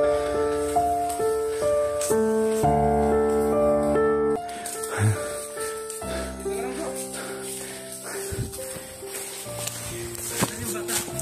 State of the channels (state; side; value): identical; both; correlation 1.00